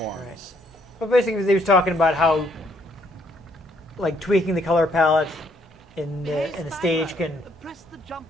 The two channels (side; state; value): both; normal; correlation 0.69